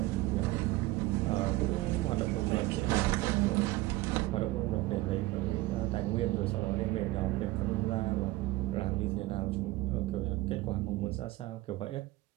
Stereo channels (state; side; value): quieter; left; 18.5 dB